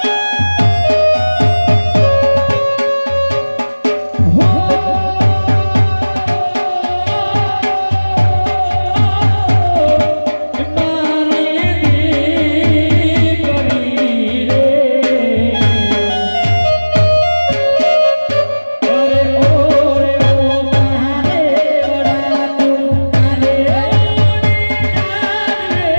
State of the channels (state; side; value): inverted; both; correlation -1.00